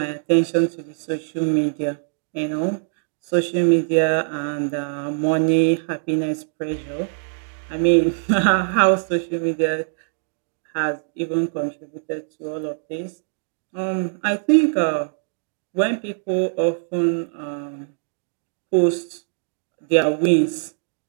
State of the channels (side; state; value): left; silent; digital silence